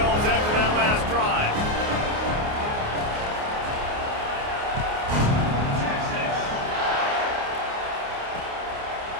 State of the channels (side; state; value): left; late; 28 ms